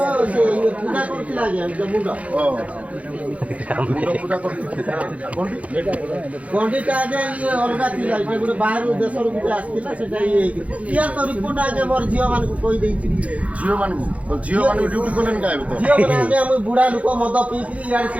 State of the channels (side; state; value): left; late; 0.066 ms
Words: ସେ ପୂଜା କରୁଥିଲା ଆଜ୍ଞା ମୁଣ୍ଡ ମୁଣ୍ଡ ପୂଜା କରୁଥିଲା ଗଣ୍ଡିଟା ଆଜ୍ଞା ଇଏ ଅଲଗା ଥିଲା ଏଇଟା ଗୋଟେ ବାହାରୁ ଦେଶରୁ ଗୋଟେ ଆସିଥିଲା ସେଟା ଇଏ ହେଇକି କିଏ ତ ରିପୋର୍ଟ ଆଜ୍ଞା ମୋର ଝିଅମାନଙ୍କୁ କହିଦେଇଛି ଝିଅମାନଙ୍କୁ ଡ୍ୟୁଟି କଲେନି କାହିଁକି ତ ଝିଅମାନେ ଆଜ୍ଞା ମୁଁ ବୁଢ଼ା ଲୋକ ମଦ ପିଇକିରି ଇଆଡ଼େ